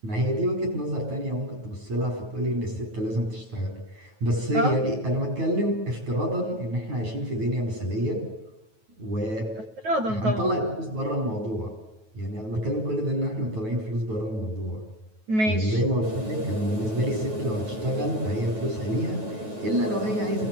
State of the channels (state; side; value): late; left; 9.2 ms